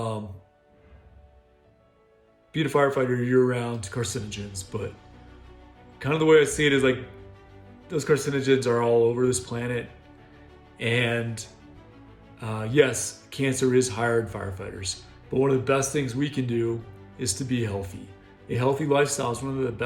a firefighter year-round to carcinogens, but kind of the way I see it is like those carcinogens are all over this planet. And yes, cancer is higher in firefighters, but one of the best things we can do is to be healthy. A healthy lifestyle is one of the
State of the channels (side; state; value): both; identical; correlation 1.00